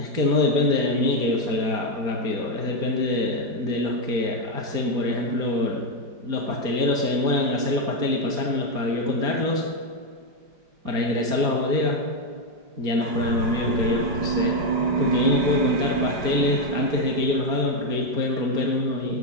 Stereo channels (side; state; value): left; late; 5.0 ms